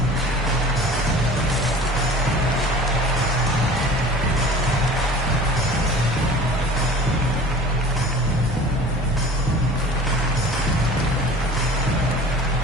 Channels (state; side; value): normal; both; correlation 0.43